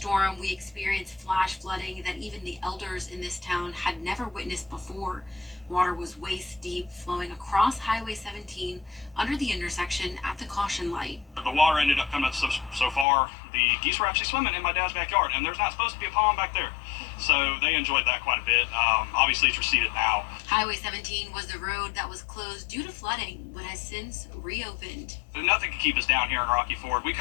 we experienced flash flooding that even the elders in this town had never witnessed before. Water was waist deep, flowing across Highway 17 under the intersection at the caution light." The water ended up coming so far, the geese were actually swimming in my dad's backyard, and there's not supposed to be a pond back there. So they enjoyed that quite a bit. Obviously, it's receded now. Highway 17 was the road that was closed due to flooding, but has since reopened. Nothing can keep us down here in Rocky Ford. We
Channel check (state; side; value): drops out; right; at 13.1 s